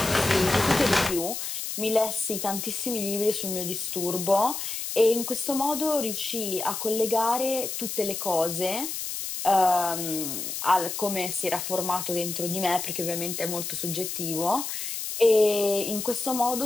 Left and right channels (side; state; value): left; noise; hiss, 5 dB below the sound